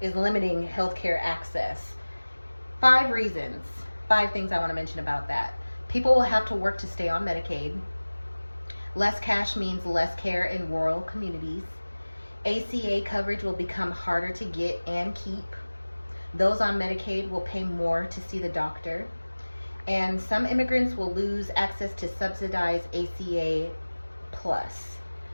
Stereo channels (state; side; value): inverted; both; correlation -1.00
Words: limiting healthcare access. 5 reasons, 5 things I want to mention about that. People will have to work to stay on Medicaid. Less cash means less care in rural communities. ACA coverage will become harder to get and keep. Those on Medicaid will pay more to see the doctor. And some immigrants will lose access to subsidized ACA plus.